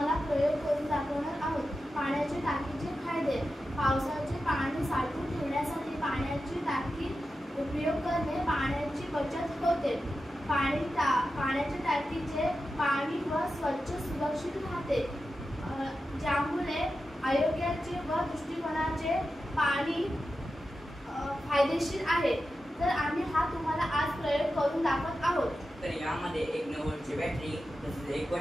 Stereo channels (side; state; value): both; normal; correlation 0.91